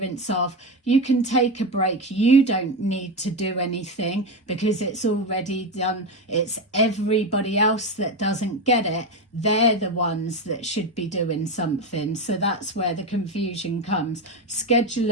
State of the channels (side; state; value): both; normal; correlation 0.15